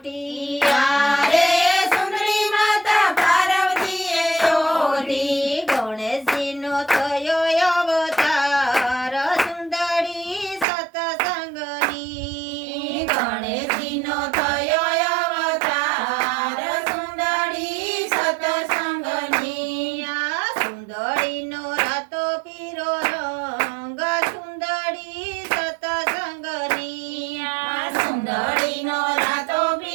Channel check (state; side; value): drops out; left; at 10.7 s